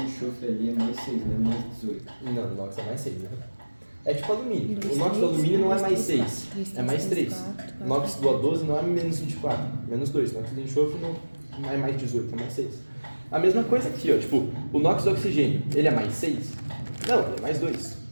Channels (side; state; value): both; inverted; correlation -1.00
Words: ali é mais 6, né? Mais 18. Não, o NOx é mais 6, né? É tipo alumínio. Dois, O NOx do três, alumínio não é dois, mais três, 6, quatro, três, é mais 3. quatro, O NOx do A12 não é menos 24, menos 2. O NOx do enxofre não é mais 18, é mais 6. A mesma coisa aqui, ó. Tipo, o NOx do oxigênio, ele é mais 6? Não, ele é mais 2.